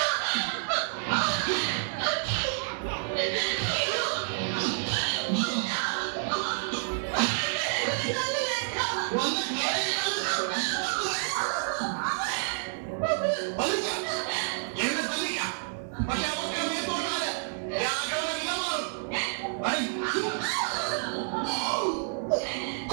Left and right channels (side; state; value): left; silent; 58 dB below the other